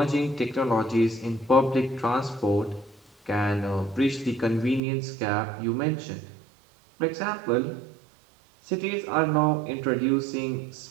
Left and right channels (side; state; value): left; drops out; at 4.8 s